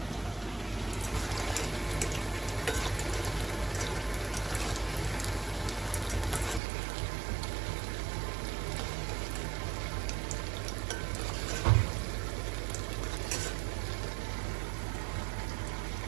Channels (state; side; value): drops out; left; at 6.6 s